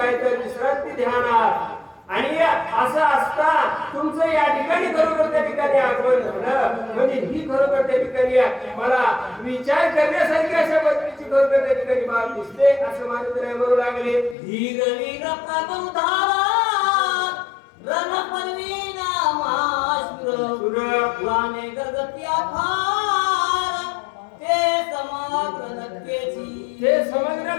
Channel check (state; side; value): drops out; right; at 14.4 s